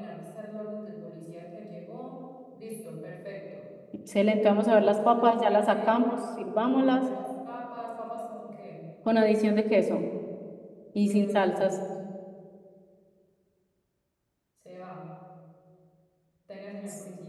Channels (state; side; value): identical; both; correlation 1.00